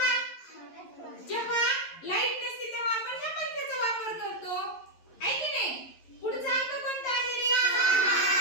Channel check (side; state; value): right; late; 11 ms